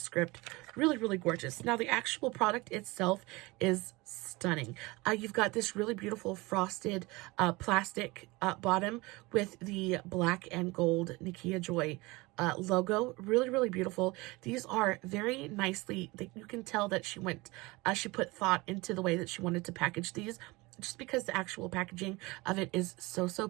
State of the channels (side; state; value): left; quieter; 23.1 dB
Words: Really, really gorgeous. Now, the actual product itself is stunning. You've got this really beautiful frosted plastic bottom with the black and gold Nikkia Joy logo. Really, really beautiful. These are very nicely, you can tell that she put thought into the way that she wanted to package these, just because the actual packaging of it is so, so